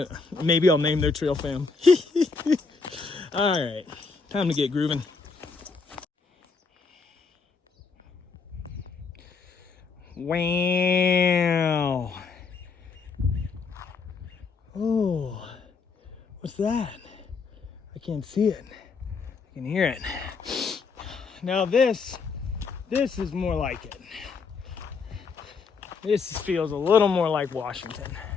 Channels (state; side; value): quieter; right; 4.8 dB